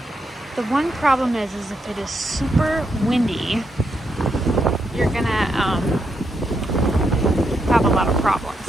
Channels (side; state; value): both; normal; correlation 0.81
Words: The one problem is if it is super windy, you're gonna have a lot of problems.